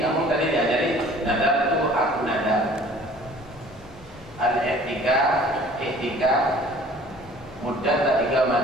tadi diajari nadar itu aku nadar. Al-i'tikaf mudah tak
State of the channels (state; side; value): normal; both; correlation 0.50